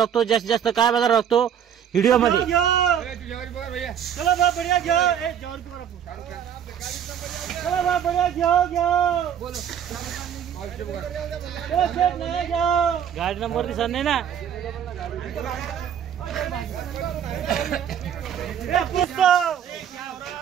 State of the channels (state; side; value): quieter; left; 8.9 dB